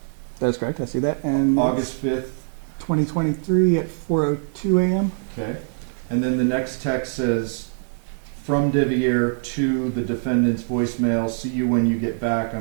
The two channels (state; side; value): silent; left; 63 dB below the other